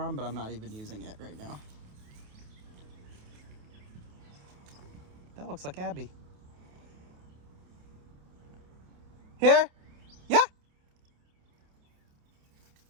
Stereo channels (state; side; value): late; left; 28 ms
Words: but I'm not even using it right now. That looks like Abby. Here? Yeah.